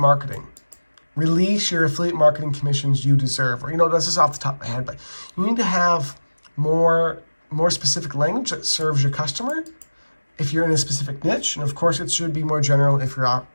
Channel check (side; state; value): both; inverted; correlation -1.00